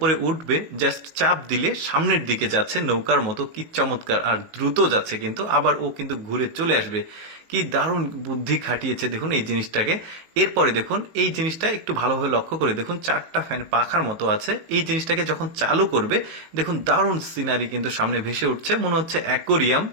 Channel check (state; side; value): late; left; 19 ms